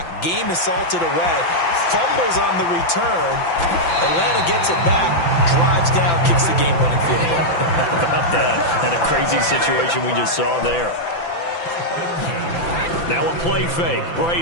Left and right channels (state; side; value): late; right; 5.9 ms